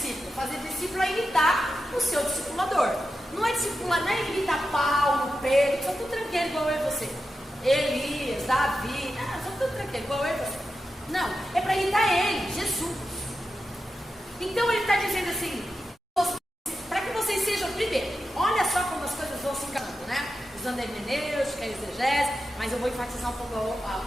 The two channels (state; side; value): normal; both; correlation 0.90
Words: Fazer discípulo é imitar o seu discipulador. Não é discipular, não é imitar Paulo, Pedro, são tudo tranqueiro igual eu e você. Elias, Davi, são tudo tranqueiro igual eu e você. Não, é para imitar ele, Jesus. Então ele está dizendo assim, para que vocês sejam primeiro, olha só como as coisas vão se encaminhando, né? Usando a hermenêutica, a exegese, mas eu vou enfatizar um pouco